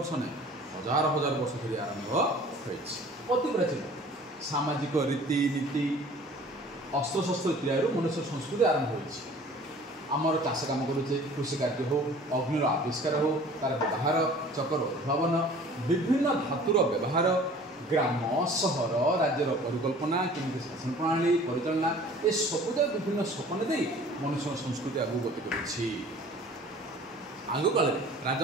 नहीं हजार हजार वर्ष धरी आरंभ अति प्राचीन सामाजिक रीति नीति अस्त्र शस्त्र तैयार मनुष्य संस्कृति आरंभ होमर चाष कम करुचे कृषि कार्य हो अग्निर आविष्कार हो तार व्यवहार चकर उद्भावन विभिन्न धातुर व्यवहार ग्राम सहर राज्यर परिकल्पना केमी शासन प्रणाली परिचालना ये सबुज विभिन्न सपन दे मनुष्य संस्कृति आगे गति कर आग काल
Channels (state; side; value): normal; both; correlation 0.48